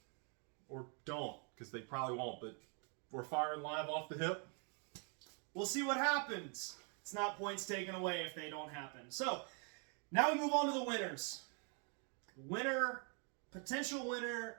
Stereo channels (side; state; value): left; quieter; 38.6 dB